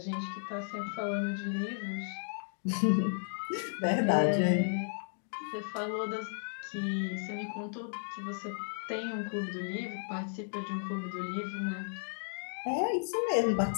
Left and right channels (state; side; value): silent; right; digital silence